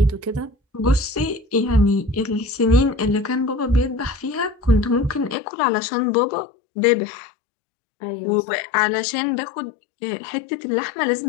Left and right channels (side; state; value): right; drops out; at 5.4 s